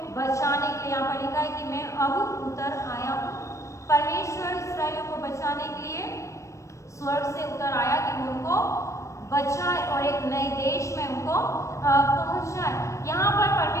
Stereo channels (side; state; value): right; late; 0.15 ms